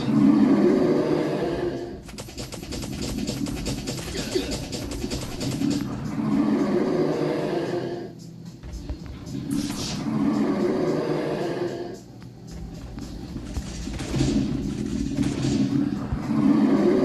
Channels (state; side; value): identical; both; correlation 1.00